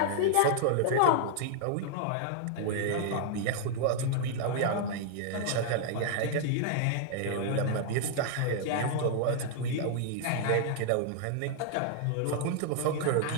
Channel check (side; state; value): both; different; correlation 0.00